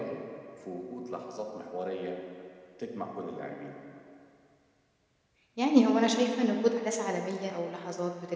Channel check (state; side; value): identical; both; correlation 1.00